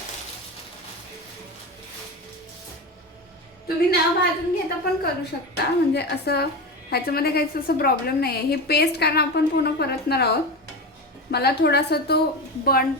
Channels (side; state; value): both; normal; correlation 0.22